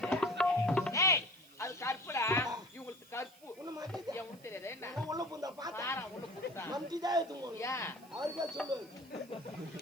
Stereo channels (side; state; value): right; noise; hiss, 25 dB below the sound